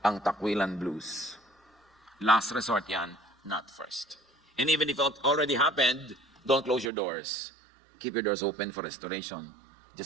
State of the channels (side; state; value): left; drops out; at 6.9 s